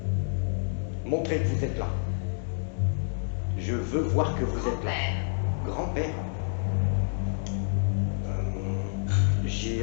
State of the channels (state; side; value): silent; right; digital silence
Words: Montrez que vous êtes là. Je veux voir que vous êtes là. Grand-père. Grand-père,